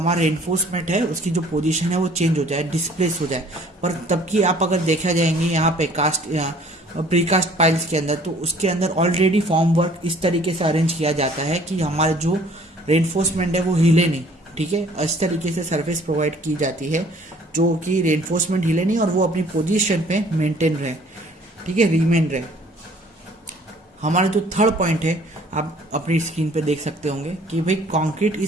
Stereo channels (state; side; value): normal; both; correlation 0.55